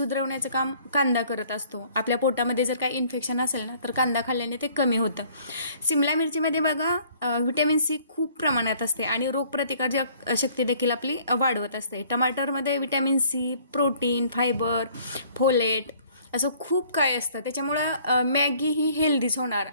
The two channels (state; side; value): inverted; both; correlation -0.58